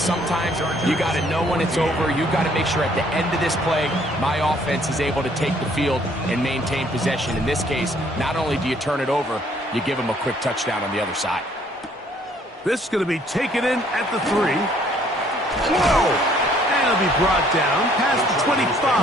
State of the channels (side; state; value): both; normal; correlation 0.62